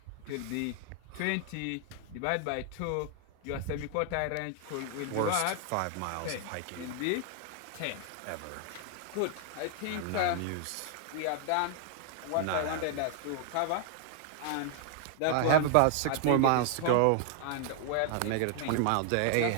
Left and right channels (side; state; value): both; different; correlation 0.00